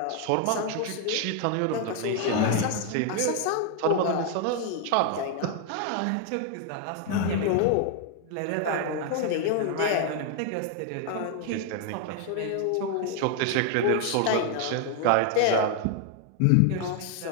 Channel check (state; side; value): different; both; correlation 0.00